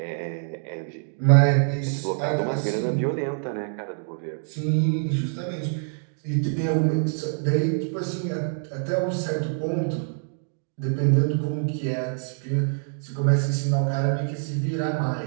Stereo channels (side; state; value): left; silent; digital silence